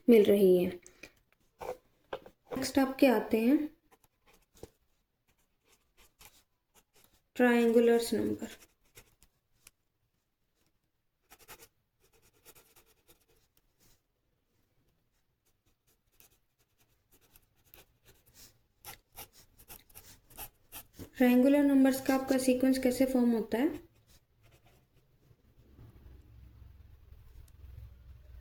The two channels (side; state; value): both; identical; correlation 1.00